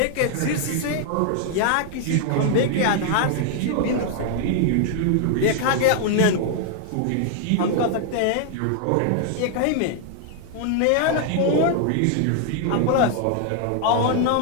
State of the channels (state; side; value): different; both; correlation 0.00